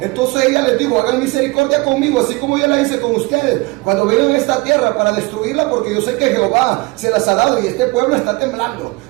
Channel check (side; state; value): left; quieter; 25.0 dB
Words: Entonces ella les dijo: hagan misericordia conmigo, así como yo la hice con ustedes cuando vengan a esta tierra para destruirla, porque yo sé que Jehová se las ha dado y este pueblo está temblando,